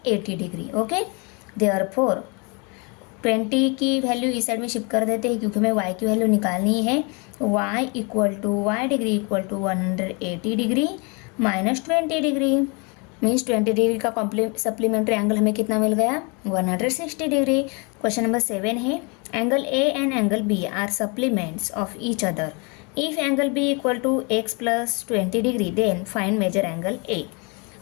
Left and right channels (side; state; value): right; quieter; 31.8 dB